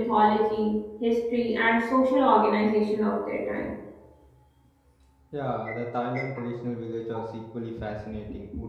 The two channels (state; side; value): identical; both; correlation 1.00